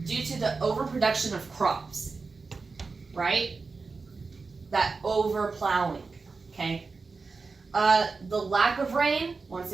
due to the overproduction of crops, right? That overplowing, okay? The lack of rain, once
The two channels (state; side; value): quieter; left; 4.3 dB